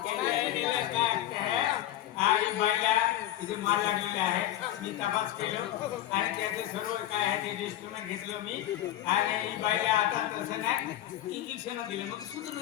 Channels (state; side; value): quieter; right; 13.2 dB